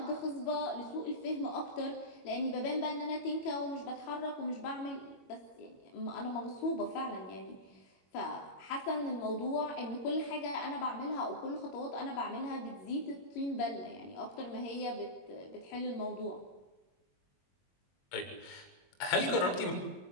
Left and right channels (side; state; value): right; late; 21 ms